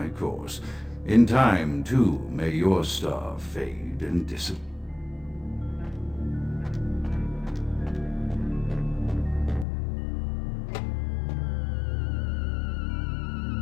course. In time, too, may your star fade and disappear.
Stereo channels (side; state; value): right; drops out; at 9.7 s